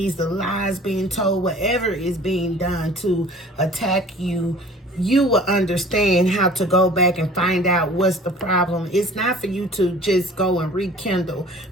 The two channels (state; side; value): normal; both; correlation 0.47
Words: the lies being told, whatever is being done to attack you, you will understand how to go back and find out what's the problem. It's not for you to just go and rekindle,